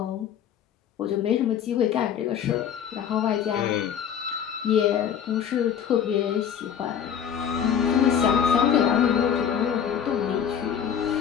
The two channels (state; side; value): quieter; right; 8.5 dB